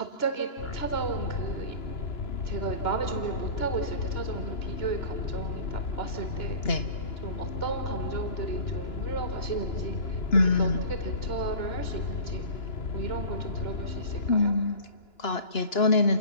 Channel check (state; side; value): late; right; 2.9 ms